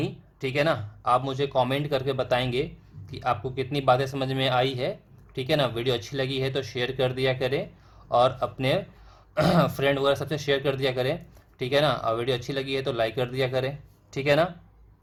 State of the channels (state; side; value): identical; both; correlation 1.00